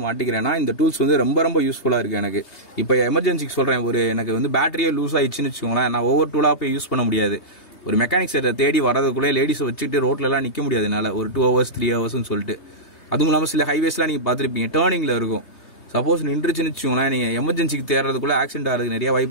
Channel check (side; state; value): right; late; 3.3 ms